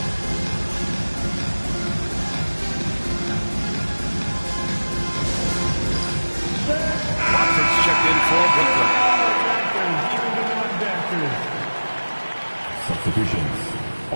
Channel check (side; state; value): both; inverted; correlation -1.00